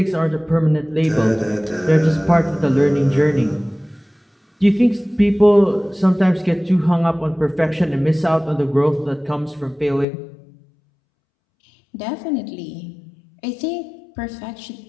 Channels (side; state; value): right; drops out; at 10.1 s